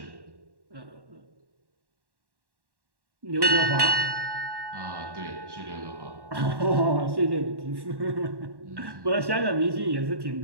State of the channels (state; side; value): late; left; 1.1 ms